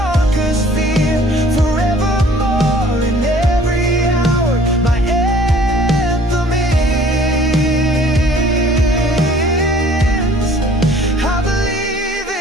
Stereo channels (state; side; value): normal; both; correlation 0.54